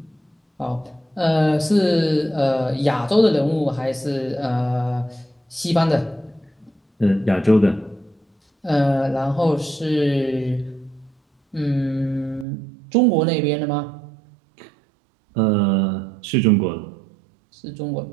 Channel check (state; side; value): drops out; left; at 12.5 s